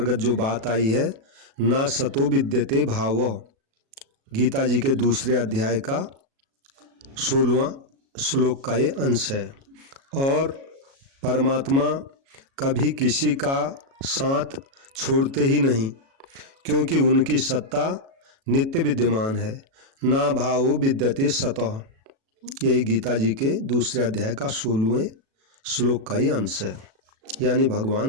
जो बात आई है, ना सतो विद्यते भावो, गीता जी के दूसरे अध्याय का 16वां श्लोक का ये अंश है। और परमात्मा कभी किसी का साथ छोड़ते ही नहीं, क्योंकि उनकी सत्ता नित्य विद्यमान है। ना भावो विद्यते सतः, यही गीता जी के दूसरे अध्याय का 16वें श्लोक का ही अंश है। यानी भगवान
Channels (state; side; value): late; left; 37 ms